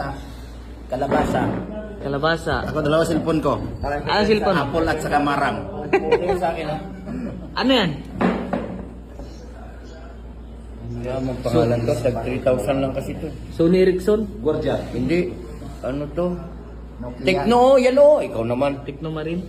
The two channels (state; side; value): identical; both; correlation 1.00